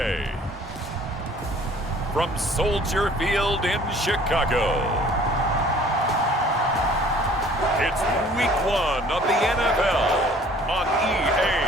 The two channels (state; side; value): normal; both; correlation 0.53